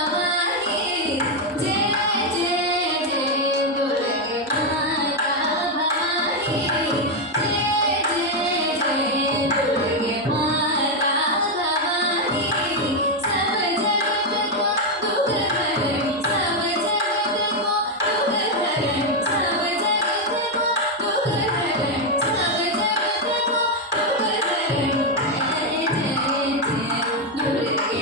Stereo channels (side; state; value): both; normal; correlation 0.03